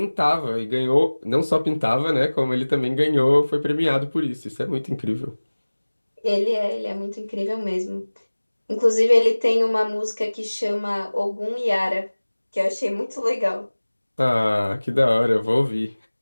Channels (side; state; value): both; inverted; correlation -1.00